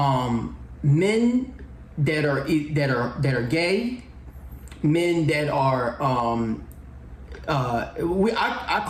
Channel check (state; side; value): identical; both; correlation 1.00